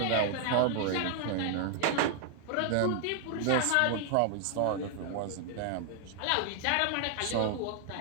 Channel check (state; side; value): different; both; correlation 0.00